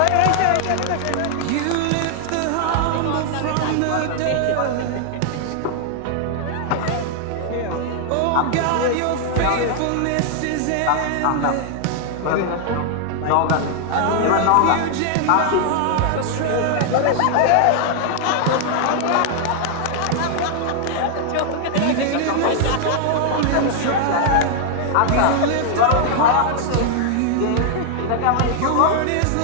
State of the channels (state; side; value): different; both; correlation 0.00